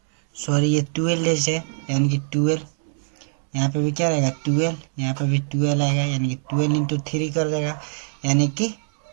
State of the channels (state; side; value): silent; left; 60 dB below the other